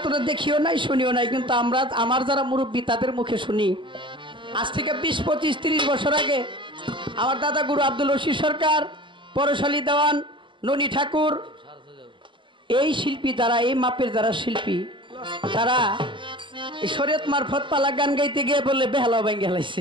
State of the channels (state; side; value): late; left; 0.24 ms